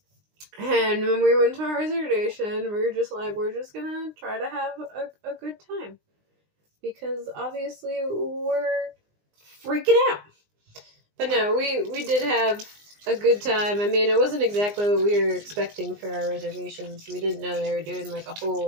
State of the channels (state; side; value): late; left; 19 ms